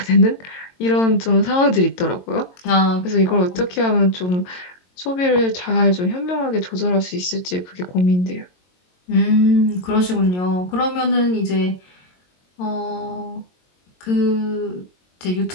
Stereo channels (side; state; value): right; late; 22 ms